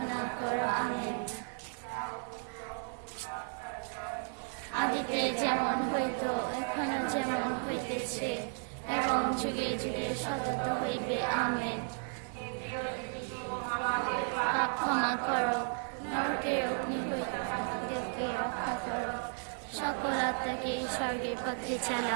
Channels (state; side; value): silent; left; 55 dB below the other